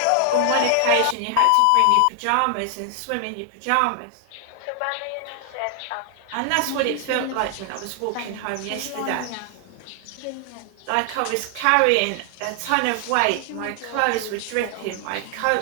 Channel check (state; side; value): different; both; correlation 0.00